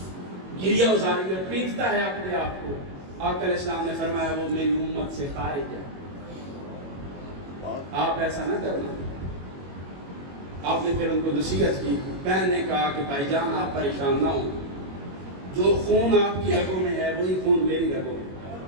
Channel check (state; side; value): late; left; 21 ms